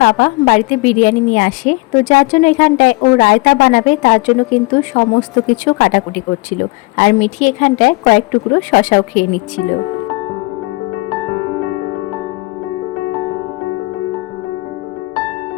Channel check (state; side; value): quieter; right; 24.7 dB